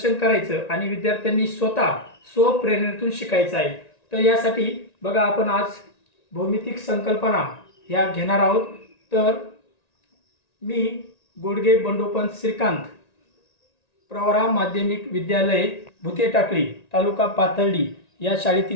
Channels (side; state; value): right; late; 1.9 ms